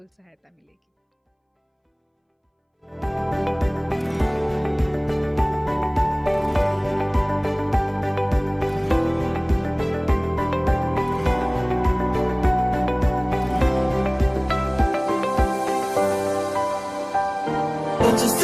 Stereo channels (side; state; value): both; identical; correlation 1.00